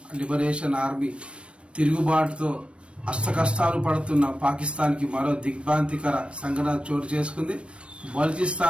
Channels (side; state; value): left; late; 0.059 ms